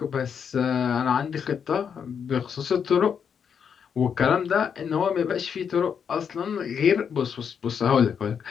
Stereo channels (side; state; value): right; quieter; 7.2 dB